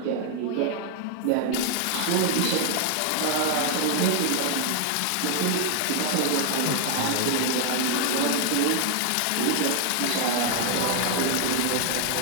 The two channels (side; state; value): both; different; correlation 0.00